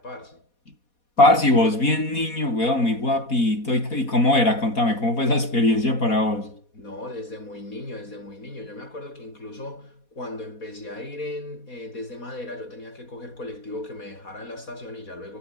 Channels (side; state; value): right; late; 4.2 ms